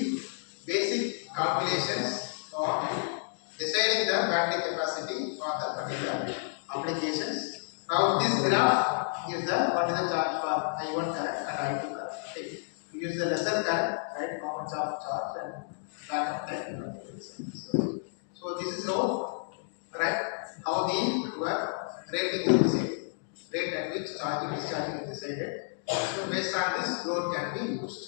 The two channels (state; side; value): silent; right; digital silence